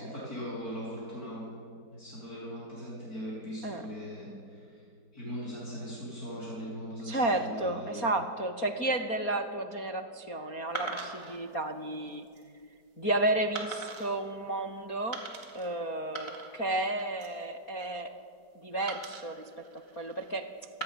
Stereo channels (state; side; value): late; right; 4.3 ms